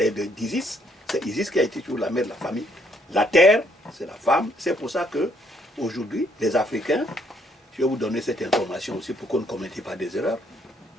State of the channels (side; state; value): both; normal; correlation 0.69